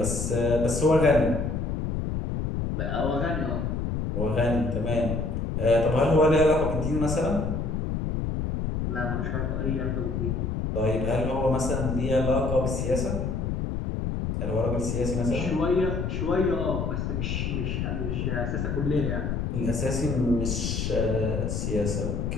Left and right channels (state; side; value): noise; left; rumble, 1 dB below the sound